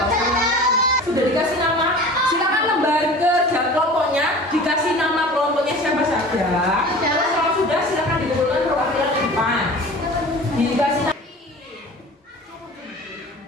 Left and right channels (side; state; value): both; normal; correlation 0.40